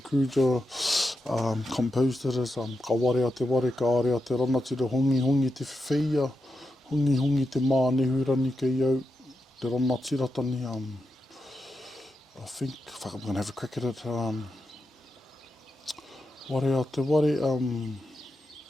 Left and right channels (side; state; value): both; normal; correlation 0.87